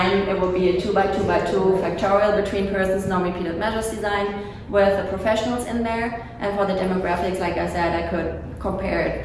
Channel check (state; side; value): identical; both; correlation 1.00